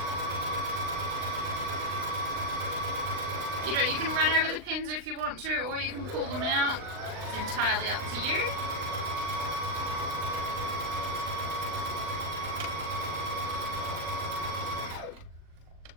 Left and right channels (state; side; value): late; left; 39 ms